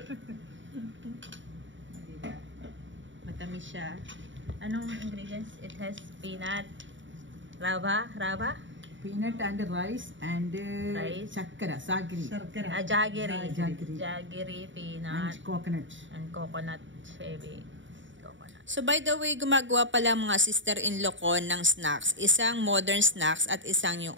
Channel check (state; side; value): late; left; 0.55 ms